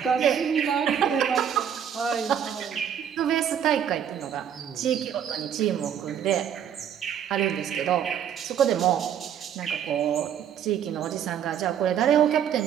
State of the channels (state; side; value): quieter; left; 8.9 dB